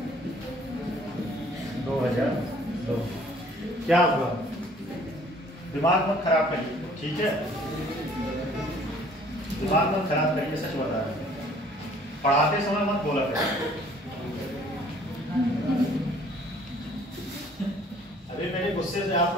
2002। क्या हुआ? दिमाग मत खराब करिए, ठीक है? दिमाग मत खराब करिए, सच बता रहे हैं। पढ़ाते समय मत बोला करिए। अभी मेरे गुस्से से आप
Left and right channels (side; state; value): both; normal; correlation 0.56